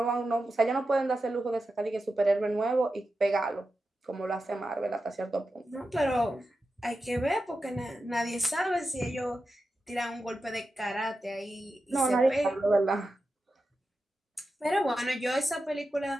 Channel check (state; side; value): normal; both; correlation 0.90